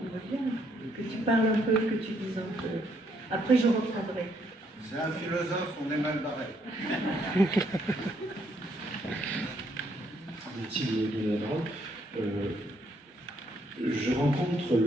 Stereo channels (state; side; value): normal; both; correlation 0.71